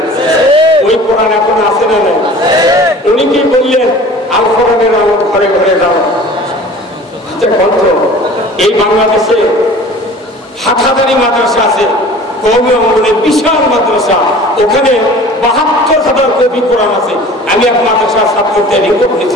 ওই কোরআন এখন আছে না নাই? উনি কি বললেন আল কোরআনের আমল ঘরে ঘরে যাও। এই বাংলাদেশে হাটহাজারি মাদ্রাসা আছে, কওমি অঙ্গনের বিশাল মাদ্রাসা, ওখানে ৭২,০০০ কপি কোরআন আছে। আমি এক মাদ্রাসার ছাত্রদের রিপোর্ট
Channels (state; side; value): normal; both; correlation 0.44